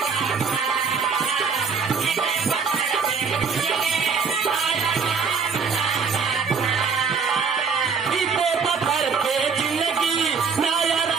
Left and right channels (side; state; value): left; quieter; 5.6 dB